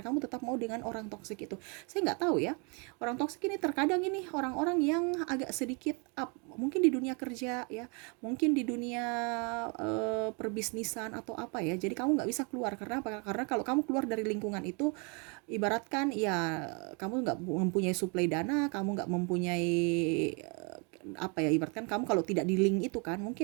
kamu tetap mau dengan orang toksik itu. Saya nggak tahu ya, orang toksik ini terkadang ini orang-orang yang agak sedikit up, mungkin di dunia kerja ya, mungkin di dunia perbisnisan atau apa ya. Jadi kamu nggak bisa keluar, karena apa? Karena kalau kamu keluar dari lingkungan itu, ibaratkan ya kamu nggak mempunyai suplai dana, kamu nggak mempunyai apa ya, ibaratkan kamu kalau tidak di link itu kan,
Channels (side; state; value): left; quieter; 33.9 dB